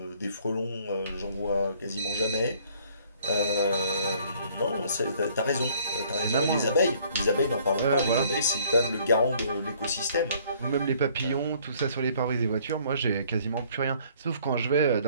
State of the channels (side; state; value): both; inverted; correlation -0.59